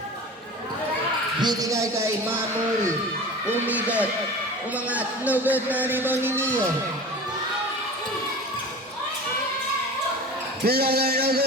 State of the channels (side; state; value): both; normal; correlation 0.35